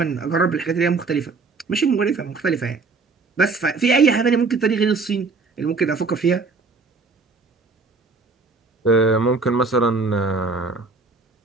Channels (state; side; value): quieter; left; 4.2 dB